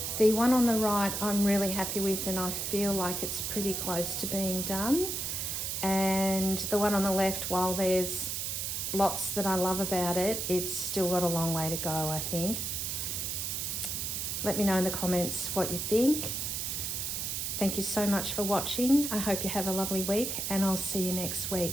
The one on the right I'm really happy with, and I feel like it's pretty close to being done. And the one on the left, while there's lots that I love about it, it's still got a long way to go, I think. Let me know in the comments what you think. Thank you so much for watching. I hope you have a lovely week, and I'll see you next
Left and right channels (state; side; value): noise; right; hiss, 2 dB below the sound